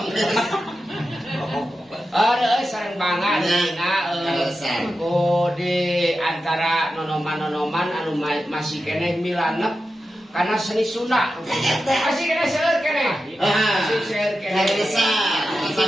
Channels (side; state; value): both; normal; correlation 0.91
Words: Reus sareng banget dina di antara nonoman-nonoman anu masih keneh milanep karena seni Sunda. Masih keneh seueur keneh. Masih seueur keneh.